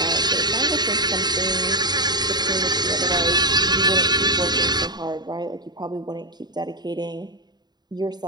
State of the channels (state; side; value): late; left; 0.20 ms